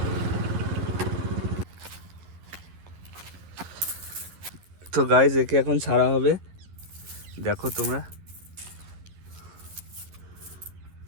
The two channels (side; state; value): left; late; 11 ms